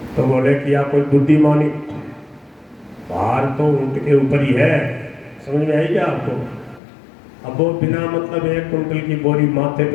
तो बोले कि आप कोई बुद्धिमानी, भार तो ऊँट के ऊपर ही है, समझ में आई क्या आपको? अब वो बिना मतलब 1 क्विंटल की बोरी माथे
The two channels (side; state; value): right; drops out; at 6.8 s